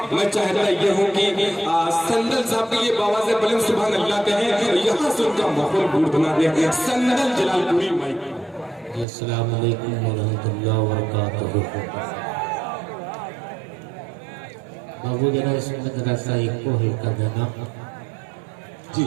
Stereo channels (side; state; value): left; drops out; at 9.1 s